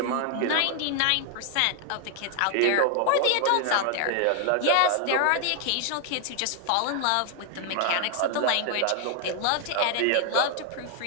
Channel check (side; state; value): both; different; correlation 0.00